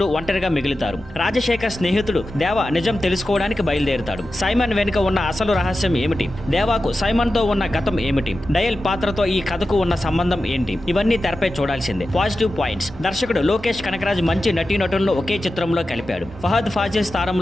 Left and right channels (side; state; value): both; normal; correlation 0.92